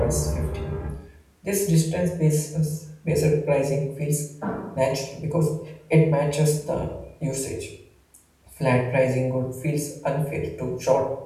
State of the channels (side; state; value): both; identical; correlation 1.00